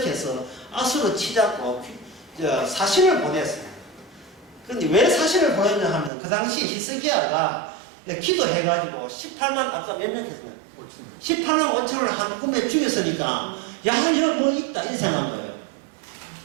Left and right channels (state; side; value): drops out; left; at 6.1 s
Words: 아수르 치자고 사신을 보냈어요. 그런데 왜 사신을 보냈냐 하면 그 당시 히스기야가 기도해가지고 18만, 아까 몇 명 했으면 18만 5천을 한 꿈에 죽였으니까 야, 여기 뭐 있다 이렇게 생각한 거예요.